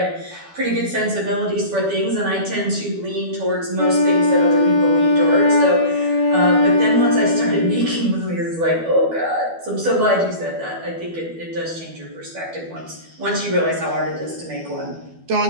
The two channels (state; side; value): late; left; 12 ms